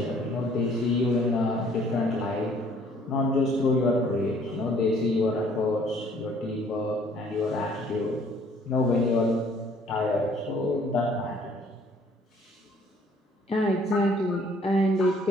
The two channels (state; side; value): normal; both; correlation 0.59